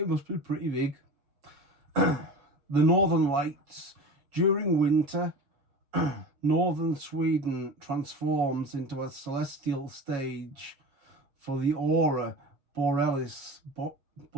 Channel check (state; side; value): late; left; 7.2 ms